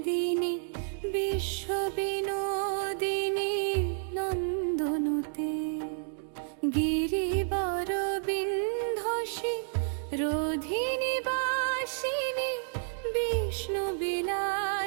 বিশ্ব বিনোদিনী নন্দনুতে গিরিবর বিন্ধসী রোধিনী বাসিনী বিষ্ণু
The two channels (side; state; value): left; silent; digital silence